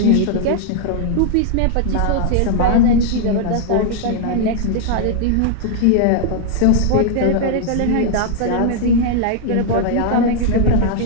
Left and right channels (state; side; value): different; both; correlation 0.00